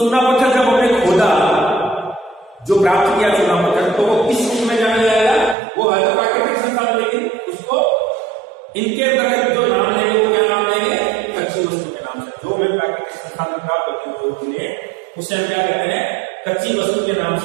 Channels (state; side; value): drops out; left; at 5.6 s